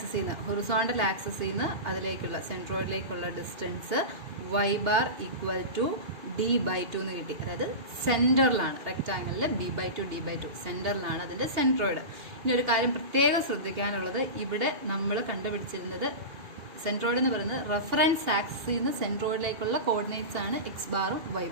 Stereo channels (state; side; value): late; left; 2.8 ms